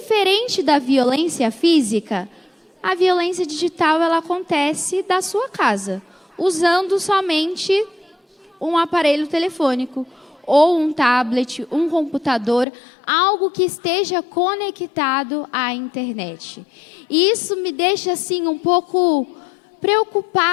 da violência física, a violência digital ela acontece da sua casa, usando somente um aparelho telefônico, ou um tablet, um computador, algo que esteja conectado à internet. E isso me deixa assim um pouco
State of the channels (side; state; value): right; drops out; at 12.7 s